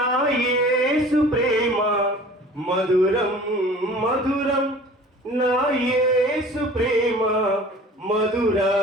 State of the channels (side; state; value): both; normal; correlation 0.45